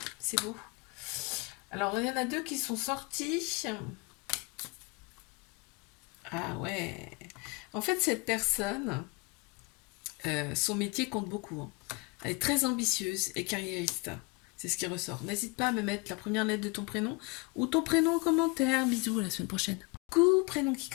c'est beau. Alors, il y en a deux qui sont sortis. Ah ouais. En fait, cette personne, son métier compte beaucoup, hein. Elle est très ambitieuse et carriériste. C'est ce qui ressort. N'hésite pas à me mettre la première lettre de ton prénom ou ton prénom en commentaire. Bisous, à la semaine prochaine. Coucou, prénom qui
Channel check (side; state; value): right; quieter; 28.2 dB